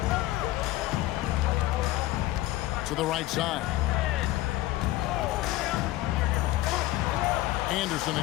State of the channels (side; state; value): right; quieter; 16.7 dB